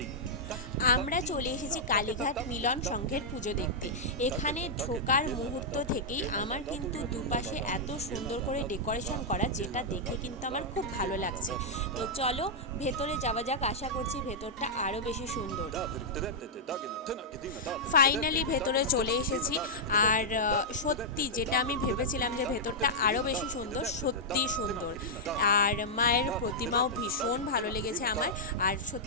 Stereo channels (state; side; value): normal; both; correlation -0.08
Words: আমরা চলে এসেছি কালীঘাট মিলন সংঘের পুজো দেখতে। এখানে ঢোকার মুহূর্ত থেকেই আমার কিন্তু দুপাশে এত সুন্দর করে ডেকোরেশন করা, যেটা দেখে কিন্তু আমার খুব ভালো লাগছে। তো চলো ভেতরে যাওয়া যাক, আশা করছি ভেতরটা আরও বেশি সুন্দর। ফাইনালি ভেতরে চলে এসেছি। আর সত্যি যেটা আমি ভেবেছিলাম যে ভেতরটা আরও বেশি সুন্দর, সত্যি সুন্দর। আর মায়ের প্রতিমাও ভীষণ ভালো লেগেছে আমার। আর